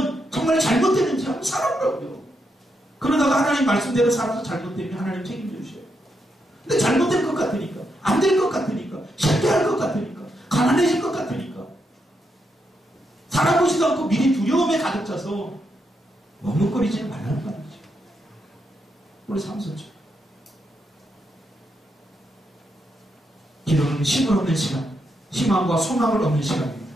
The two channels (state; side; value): normal; both; correlation 0.81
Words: 정말 잘못되는지 한번 살아보라고요. 그러다가 하나님 말씀대로 살아서 잘못되면 하나님 책임져 주셔요. 근데 잘못될 것 같으니까, 안 될 것 같으니까, 실패할 것 같으니까, 가난해질 것 같으니까 살아보지도 않고 미리 두려움에 가득 차서 머뭇거리지는 말라는 말이죠. 우리 삼손죠. 기도는 힘을 얻는 시간, 희망과 소망을 얻는 시간입니다.